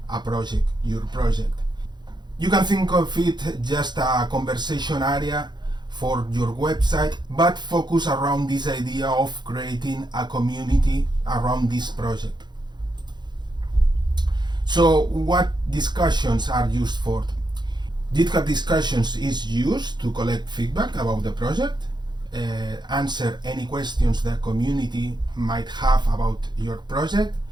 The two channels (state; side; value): late; left; 0.21 ms